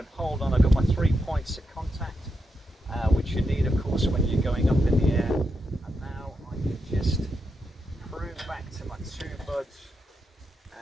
hold on. I've got my 3 points of contact, which you need, of course, when you're going up in the air. And now I can just prune back to my 2 buds,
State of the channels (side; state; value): both; normal; correlation 0.85